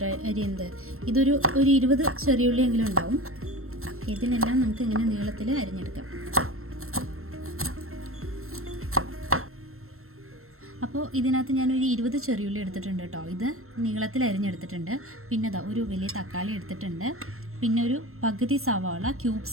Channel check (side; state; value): left; late; 0.62 ms